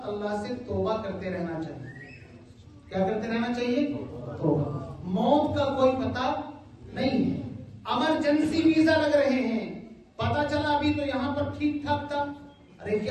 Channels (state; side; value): identical; both; correlation 1.00